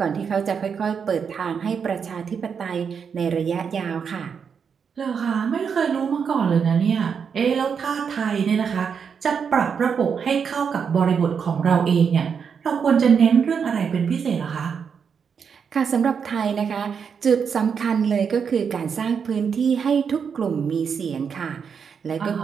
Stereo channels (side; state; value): left; quieter; 6.6 dB